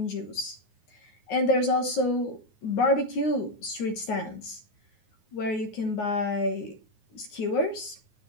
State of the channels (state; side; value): late; right; 9.5 ms